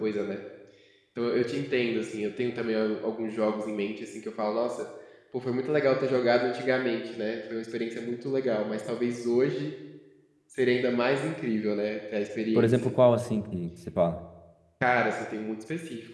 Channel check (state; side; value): identical; both; correlation 1.00